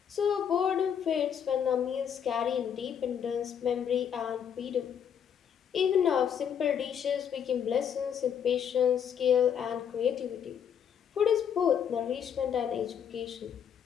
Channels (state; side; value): quieter; right; 8.2 dB